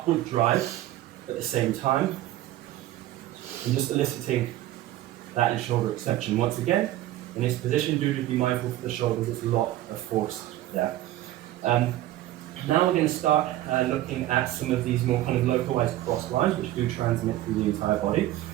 drive at the same time, and just eliciting that in shoulder extension. Once again, in this position, do just be mindful for the shoulders, there's a lot of force there. Now we're going to start looking at some of these more kind of localized cross lines, which do transmit through the entire body.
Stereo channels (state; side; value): quieter; left; 14.6 dB